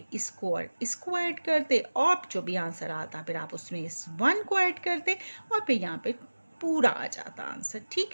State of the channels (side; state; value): both; inverted; correlation -1.00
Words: इसको और इसको ऐड करते, और जो भी आंसर आता फिर आप उसमें इस 1 को ऐड करते, और फिर यहाँ पे पूरा आ जाता आंसर।